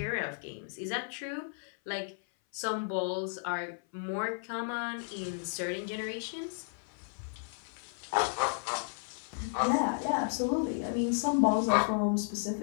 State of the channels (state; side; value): silent; right; 55 dB below the other